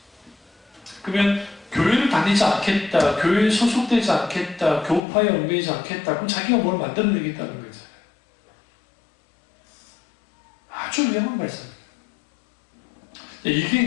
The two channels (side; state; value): right; drops out; at 5.0 s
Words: 그러면 교회를 다니지 않겠다, 교회에 소속되지 않겠다, 교파에 얽매이지 않겠다, 그럼 자기가 뭘 만들어내겠다는 거죠. 아주 위험한 말씀입니다. 이게